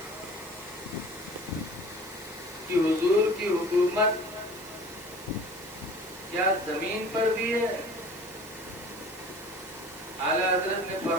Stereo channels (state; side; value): noise; right; hiss, 18 dB below the sound